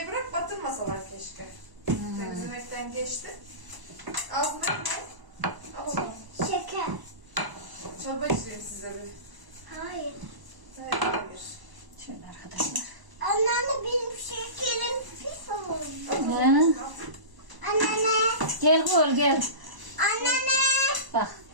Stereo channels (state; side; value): late; left; 1.0 ms